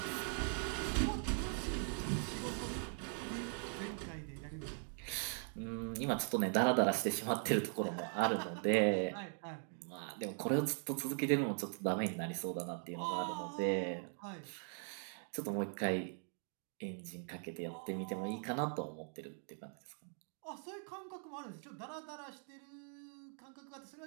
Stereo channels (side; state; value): left; silent; 50 dB below the other